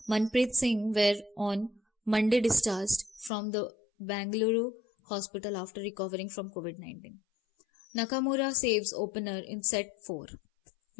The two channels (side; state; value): right; drops out; at 3.3 s